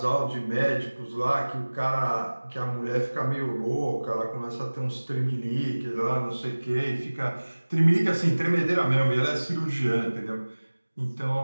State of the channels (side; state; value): both; inverted; correlation -1.00